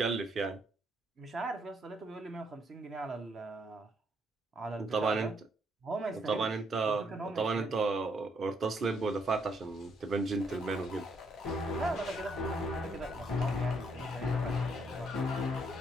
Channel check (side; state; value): both; normal; correlation 0.72